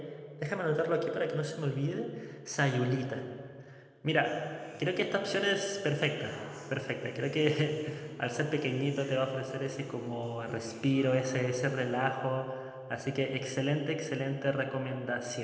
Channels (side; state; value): both; identical; correlation 1.00